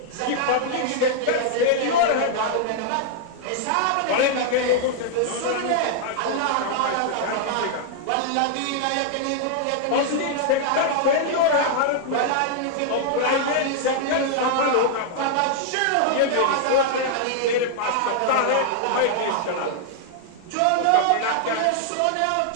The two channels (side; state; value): both; different; correlation -0.01